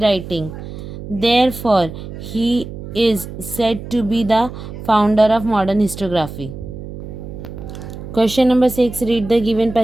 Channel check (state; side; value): noise; right; hum, 11 dB below the sound